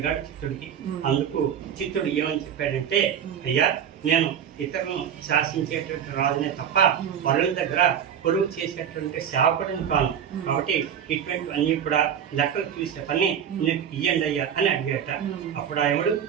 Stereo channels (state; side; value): quieter; left; 8.6 dB